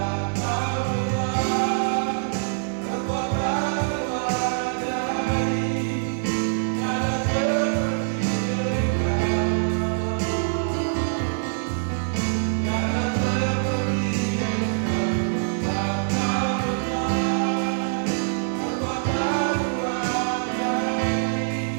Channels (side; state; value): left; silent; digital silence